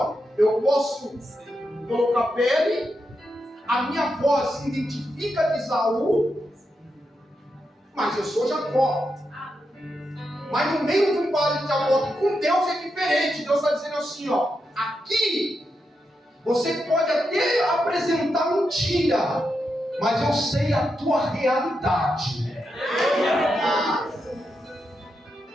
eu posso colocar pele, a minha voz se identifica de Esaú, mas eu sou Jacó. Mas no meio de um vale de Jacó, com Deus é diferente. Deus está dizendo assim: ó, aqui você pode até apresentar mentira, mas eu sei a tua realidade.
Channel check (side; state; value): both; normal; correlation 0.85